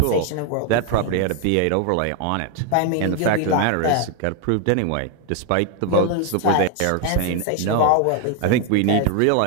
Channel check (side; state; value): both; different; correlation 0.01